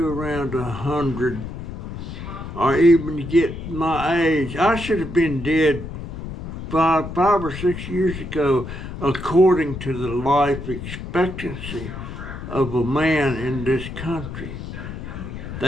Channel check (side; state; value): left; noise; rumble, 9 dB below the sound